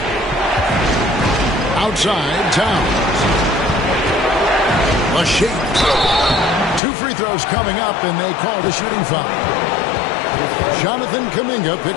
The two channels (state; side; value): drops out; right; at 6.8 s